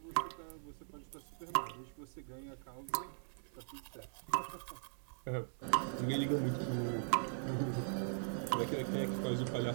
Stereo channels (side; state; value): left; silent; 51 dB below the other